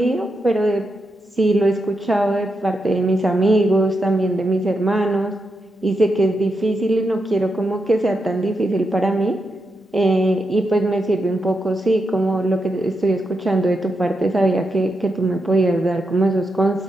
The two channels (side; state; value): both; normal; correlation 0.85